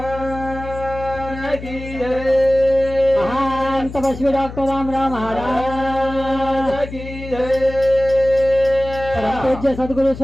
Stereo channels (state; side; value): noise; left; hum, 12 dB below the sound